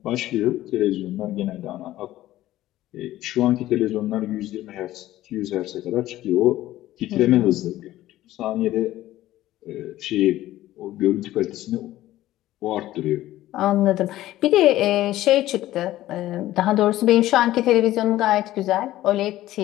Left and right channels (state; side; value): quieter; right; 14.9 dB